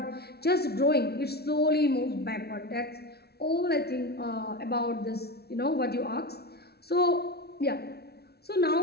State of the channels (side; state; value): right; late; 0.47 ms